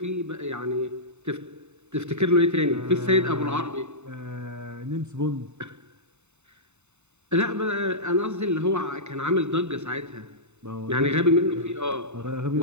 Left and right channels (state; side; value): late; left; 0.82 ms